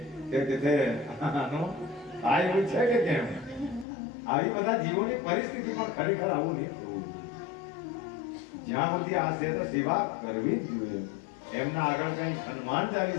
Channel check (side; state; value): right; drops out; at 3.9 s